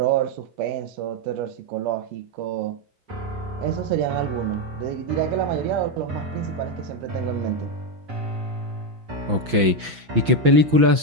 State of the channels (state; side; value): late; left; 6.0 ms